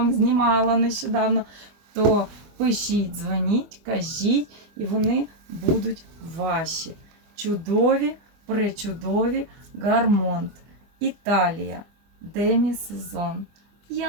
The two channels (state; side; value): late; left; 24 ms